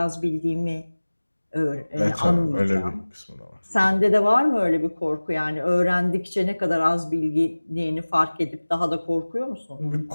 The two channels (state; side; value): inverted; both; correlation -1.00